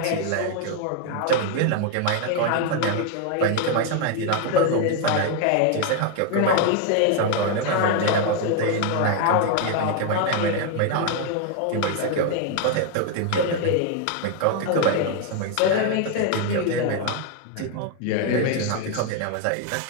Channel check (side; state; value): both; different; correlation 0.01